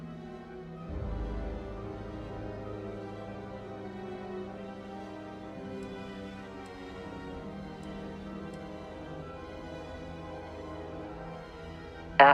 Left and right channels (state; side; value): identical; both; correlation 1.00